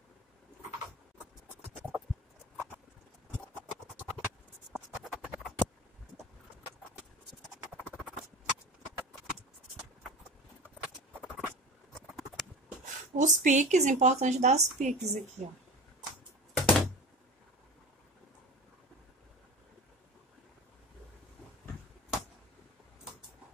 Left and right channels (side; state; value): both; normal; correlation 0.33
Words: Os piques, importante dar os piques aqui, ó.